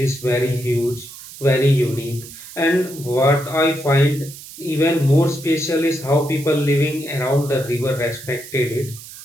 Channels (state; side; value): noise; right; hiss, 15 dB below the sound